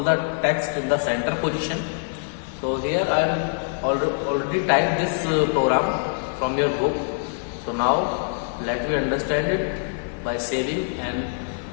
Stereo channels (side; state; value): right; silent; digital silence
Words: the text in the center position. So here I am already typed this program from your book. So now let me understand it by saving and